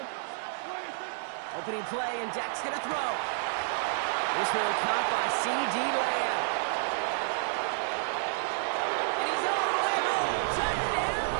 Opening play, and Dak's going to throw. This one caught by C.D. Lamb. And he's all the way home. Touchdown,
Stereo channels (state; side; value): silent; left; digital silence